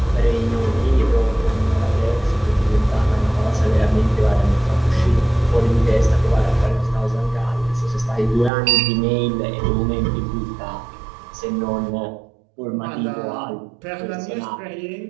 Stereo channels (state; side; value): drops out; left; at 8.5 s